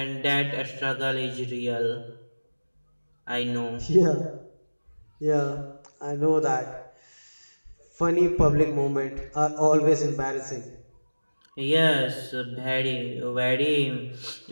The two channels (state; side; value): inverted; both; correlation -1.00